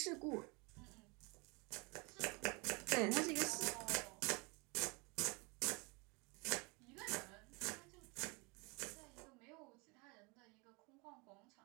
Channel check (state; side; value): quieter; left; 29.0 dB